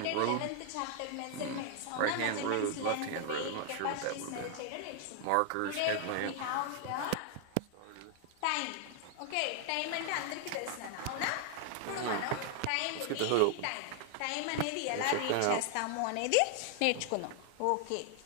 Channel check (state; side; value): different; both; correlation 0.00